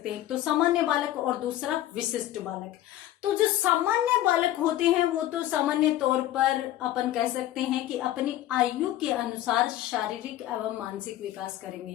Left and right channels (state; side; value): quieter; right; 13.8 dB